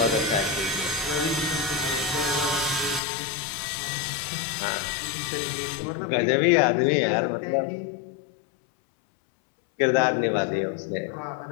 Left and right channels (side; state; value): right; drops out; at 3.0 s